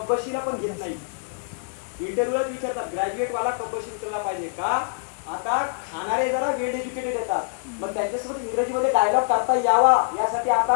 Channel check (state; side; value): silent; right; 62 dB below the other